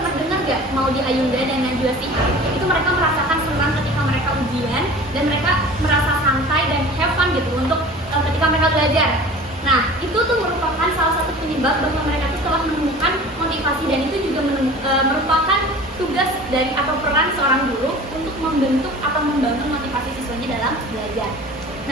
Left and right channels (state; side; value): normal; both; correlation 0.41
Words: dengar gak mau di Ayunda dan Najwa Shihab itu mereka merasakan senang ketika mereka ujian dan mereka merasa santai dan have fun gitu untuk ketika mereka belajar. Nah, itu tuh merupakan salah satu penyebab bahwa mereka tuh telah menemukan motivasi, dan itu juga merupakan tugas dari atau peran seorang guru untuk membentuk atau membangun motivasi siswanya dalam belajar.